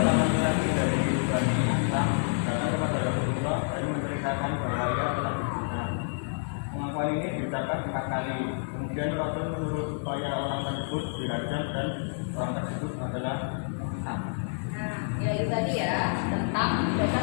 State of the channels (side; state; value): right; silent; digital silence